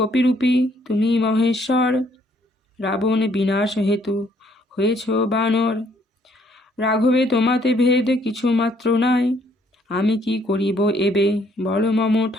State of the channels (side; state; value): both; normal; correlation 0.66